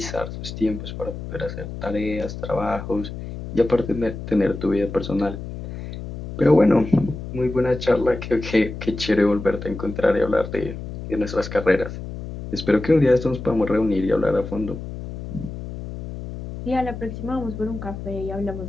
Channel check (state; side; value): noise; left; hum, 9 dB below the sound